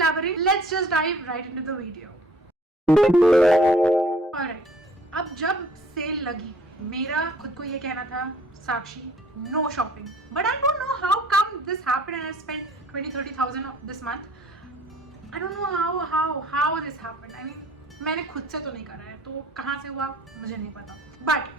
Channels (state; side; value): normal; both; correlation 0.55